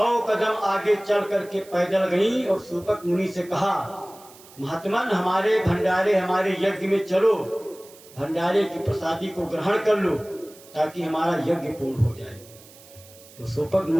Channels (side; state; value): right; noise; hiss, 22 dB below the sound